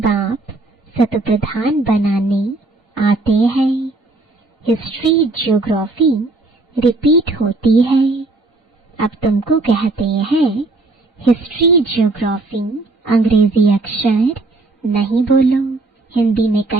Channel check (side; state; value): left; quieter; 3.2 dB